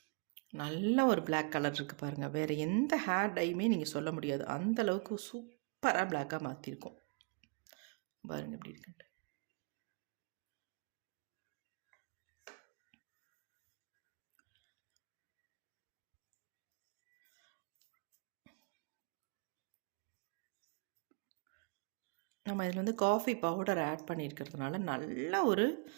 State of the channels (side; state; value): left; quieter; 35.8 dB